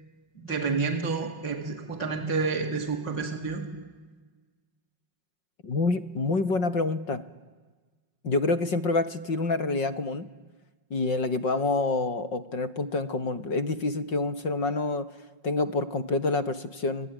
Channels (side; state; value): right; late; 5.5 ms